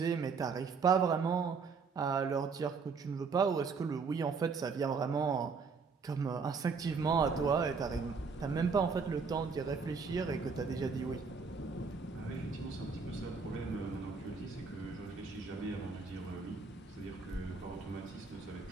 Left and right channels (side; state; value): left; quieter; 5.1 dB